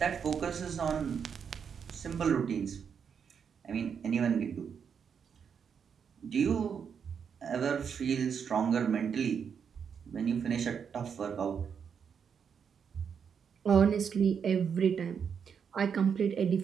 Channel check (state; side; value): quieter; left; 7.0 dB